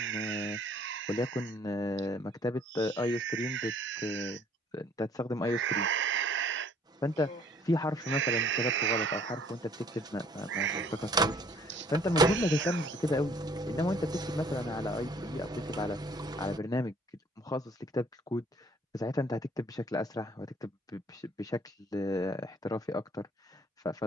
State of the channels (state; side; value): normal; both; correlation 0.59